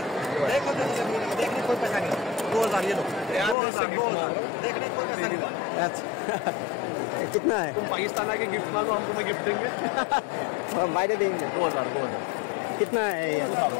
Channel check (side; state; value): right; drops out; at 3.6 s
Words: देखने कोई पैसा नहीं, 2000 ये लो, 2000 देखने कोई पैसा नहीं। अच्छा कितना है? तुम पाकिस्तान आके गिफ्ट मांगो, हमको मैं गिफ्ट देंगे। বাইরে देंगे। 2000। कितना है ये?